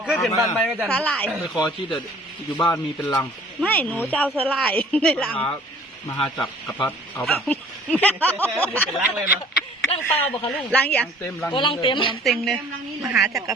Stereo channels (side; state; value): both; normal; correlation 0.52